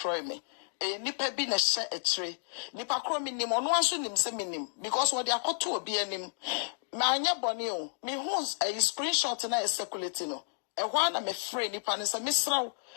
me. Nipa bi na hye etire. Nipa kro me nim ono anso nim se me nim because what they akoto obi anim. Ma anya bone o. Me hu a screenshot na circulating no. Ehwa na me free nipa ne se me sraw.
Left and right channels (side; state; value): right; silent; digital silence